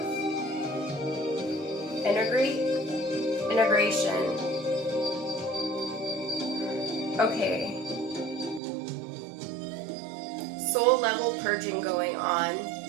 Integration. Okay. Soul level purging going on.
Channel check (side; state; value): left; drops out; at 8.6 s